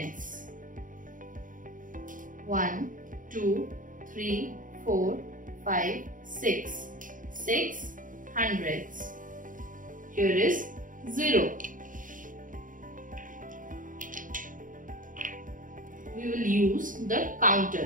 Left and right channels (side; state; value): left; late; 0.39 ms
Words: 1, 2, 3, 4, 5, 6. 6 hundredths. Here is 0. We will use the